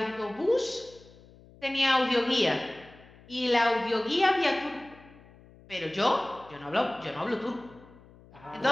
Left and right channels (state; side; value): noise; left; hum, 24 dB below the sound